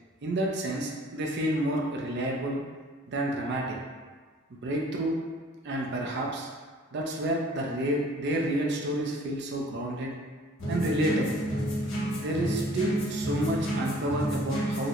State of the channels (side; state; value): both; normal; correlation 0.53